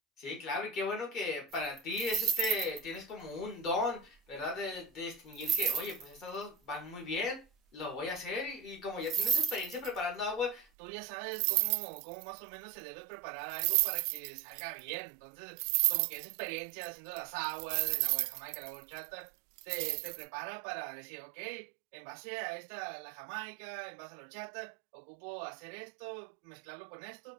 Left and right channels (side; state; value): left; drops out; at 10.7 s